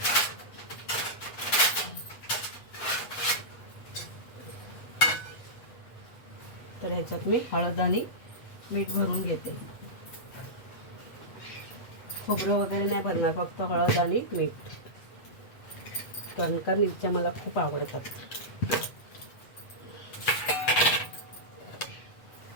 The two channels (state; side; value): late; right; 8.2 ms